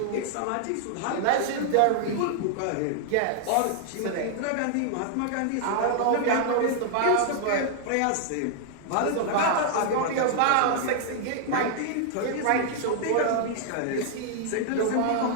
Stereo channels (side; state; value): both; different; correlation -0.01